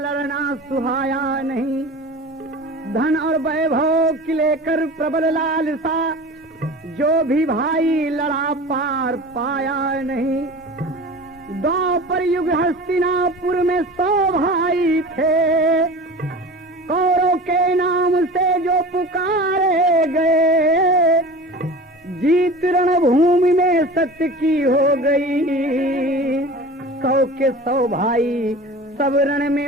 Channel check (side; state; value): both; normal; correlation 0.36